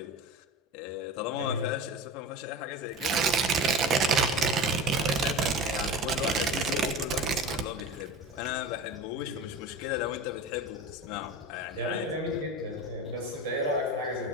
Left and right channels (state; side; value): normal; both; correlation 0.31